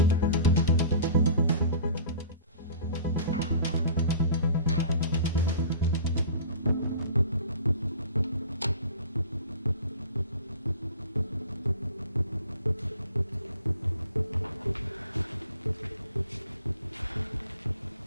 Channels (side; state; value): both; inverted; correlation -0.42